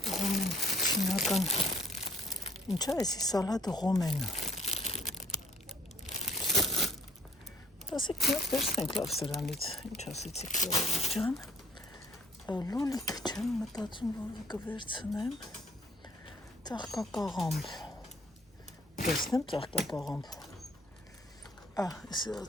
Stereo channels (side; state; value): both; normal; correlation 0.60